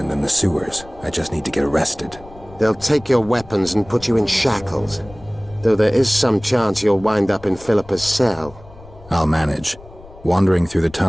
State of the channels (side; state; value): left; noise; rumble, 21 dB below the sound